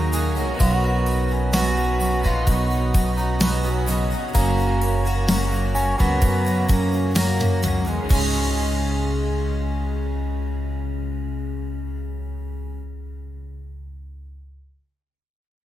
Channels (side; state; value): both; normal; correlation 0.90